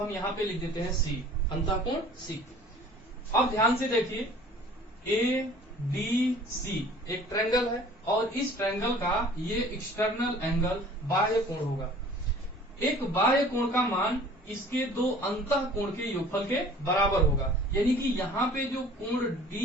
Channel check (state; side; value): normal; both; correlation 0.49